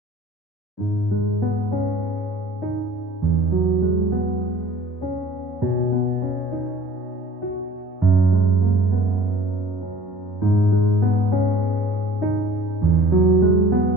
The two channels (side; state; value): both; normal; correlation 0.47